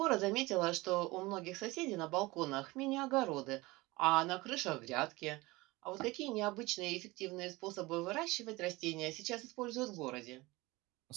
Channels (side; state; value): left; quieter; 21.7 dB